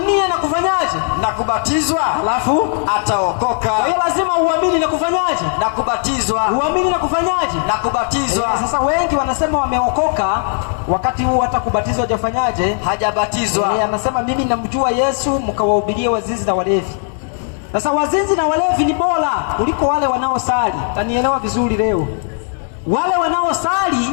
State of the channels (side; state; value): right; silent; 59 dB below the other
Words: na kufanyaje? Na kubatizwa. Alafu ataokoka. Kwa hiyo lazima uamini na kufanyaje? Na kubatizwa. Uamini na kufanyaje? Na kubatizwa. Sasa wengi wanasema wameokoka, wakati huu hata kubatizwa hajafanyaje? Hajabatizwa. Anasema mimi namjua Yesu, mkawahubirie wazinzi na walevi. Sasa wazinzi na walevi ni bora kuliko wale wanaosali. Tanielewa vizuri leo. Wale